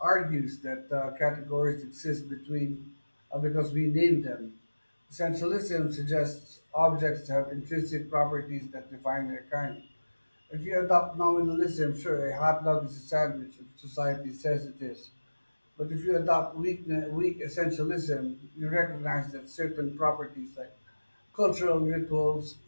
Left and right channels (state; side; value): inverted; both; correlation -1.00